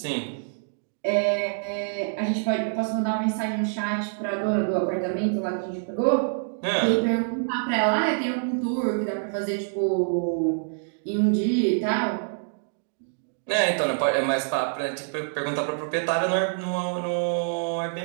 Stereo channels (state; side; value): silent; left; digital silence